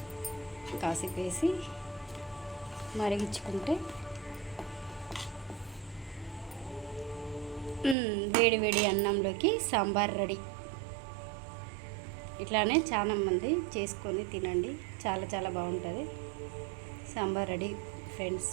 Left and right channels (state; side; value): drops out; left; at 8.0 s